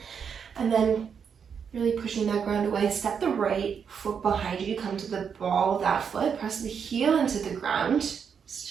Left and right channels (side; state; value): left; quieter; 6.9 dB